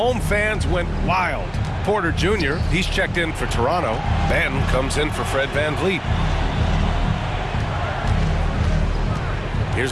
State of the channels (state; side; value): identical; both; correlation 1.00